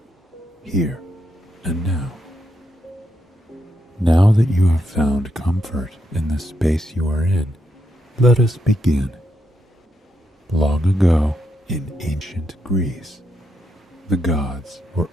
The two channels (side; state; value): both; normal; correlation 0.81